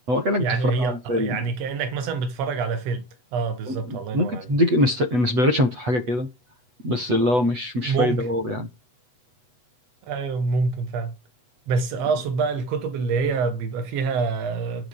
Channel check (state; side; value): late; left; 8.1 ms